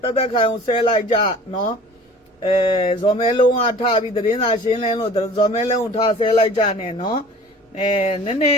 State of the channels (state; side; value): normal; both; correlation 0.45